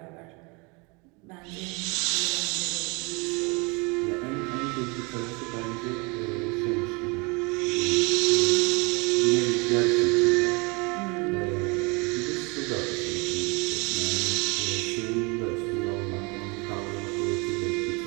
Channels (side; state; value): left; quieter; 29.0 dB